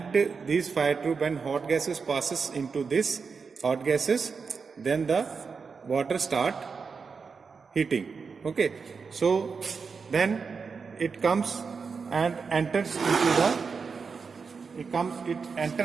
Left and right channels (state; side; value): quieter; left; 5.3 dB